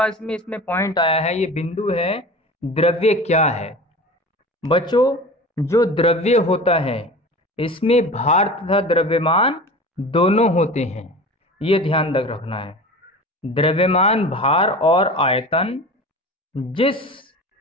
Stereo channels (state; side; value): normal; both; correlation 0.35